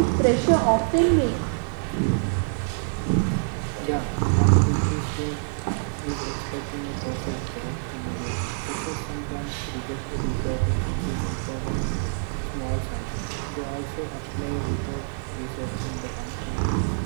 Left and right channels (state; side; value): silent; left; 61 dB below the other